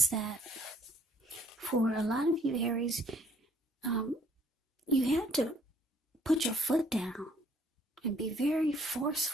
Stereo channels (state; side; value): normal; both; correlation 0.62